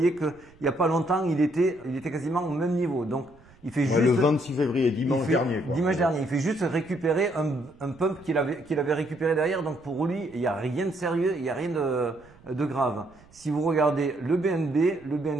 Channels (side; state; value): right; noise; rumble, 26 dB below the sound